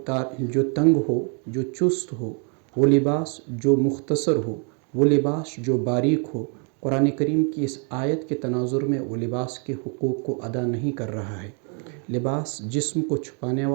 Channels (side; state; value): left; quieter; 39.0 dB